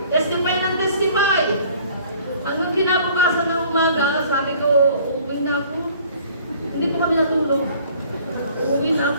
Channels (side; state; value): both; inverted; correlation -0.53